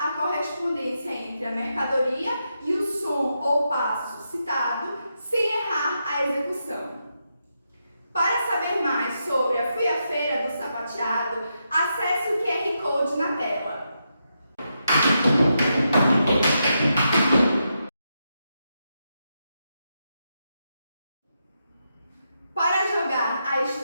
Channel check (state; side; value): inverted; both; correlation -0.84